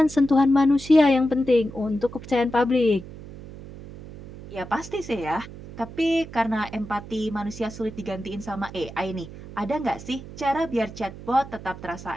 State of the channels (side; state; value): right; noise; hum, 14 dB below the sound